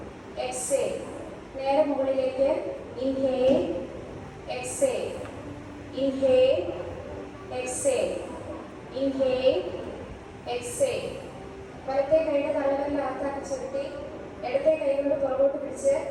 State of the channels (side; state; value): both; identical; correlation 1.00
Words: exhale. നേരെ മുകളിലേക്ക്. Inhale, exhale, inhale, exhale, inhale, exhale. വലത്തെ കൈയുടെ തള്ളവിരൽ അകത്താക്കി ചുരുട്ടി ഇടത്തെ കൈ കൊണ്ട് പുറകോട്ട് പിടിച്ച്